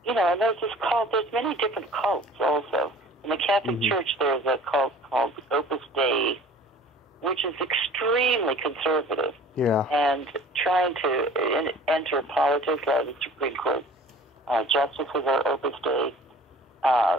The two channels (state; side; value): normal; both; correlation 0.47